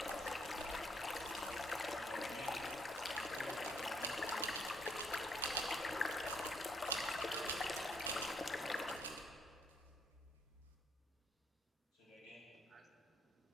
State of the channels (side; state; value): both; normal; correlation 0.70